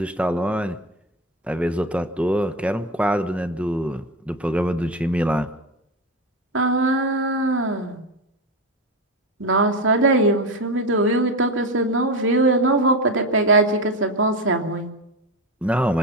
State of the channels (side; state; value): both; normal; correlation 0.18